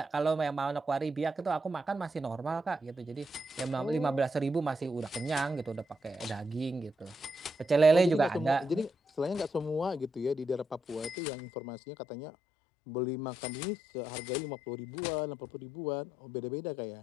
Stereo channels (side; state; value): right; drops out; at 11.2 s